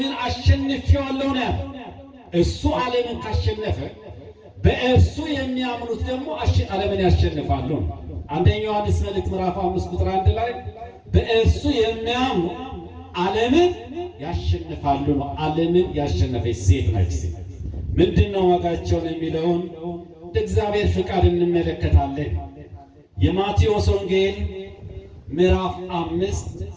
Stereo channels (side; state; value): both; identical; correlation 1.00